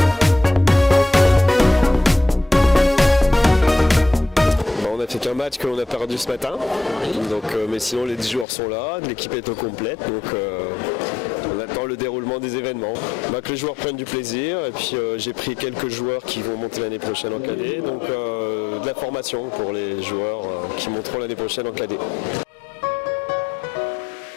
On a fait qu'un match que l'on a perdu ce matin, donc, mais sinon les 10 joueurs sont là, l'équipe est au complète, donc on attend le déroulement des événements. Que les joueurs prennent du plaisir et puis j'ai pris quelques joueurs qui vont monter l'année prochaine en cadet, donc de la formation pour les joueurs qui monteront l'année prochaine en cadet.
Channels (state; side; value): drops out; right; at 8.5 s